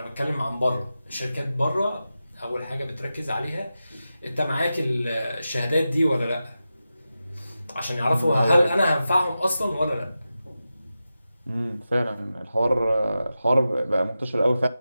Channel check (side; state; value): both; inverted; correlation -0.92